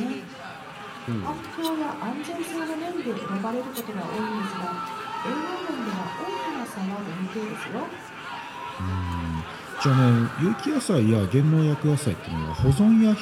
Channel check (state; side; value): identical; both; correlation 1.00